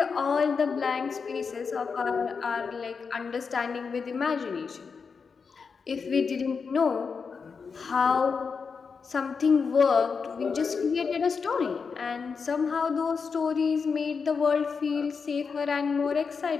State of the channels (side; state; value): right; quieter; 5.4 dB